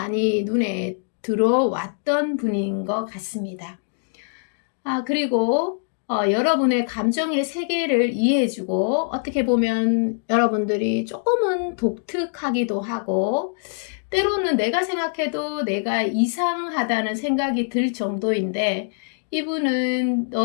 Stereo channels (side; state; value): right; silent; digital silence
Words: 눈에 들어왔던 분인 것 같습니다. 그리고 여러분의 감정의 세계를 이해해주고 어떻게 보면 여러분들이 조금은 독특하기도 하고 때로는 내가 생각해도 내가 이상하다는 생각이 들 정도인데 이분은